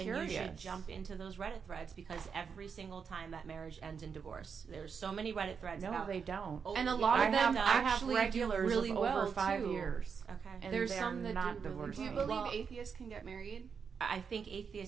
And you should jump into those Reddit threads, because every single time that marriage ends in divorce. There's so many Reddit threads. No, about, they don't. Oh, And a lot of them I have actually regulars do really of well over 5 too. years. Okay. And There's they're some that not do really divorced. Do you well. believe atheists can get married? I think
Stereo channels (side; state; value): left; quieter; 6.2 dB